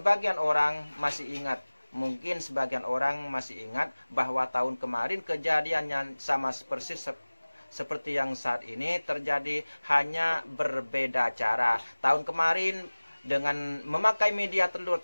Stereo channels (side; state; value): both; inverted; correlation -1.00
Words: orang masih ingat bahwa tahun kemarin kejadiannya sama persis seperti yang saat ini terjadi, hanya berbeda cara. Tahun kemarin dengan memakai media telur,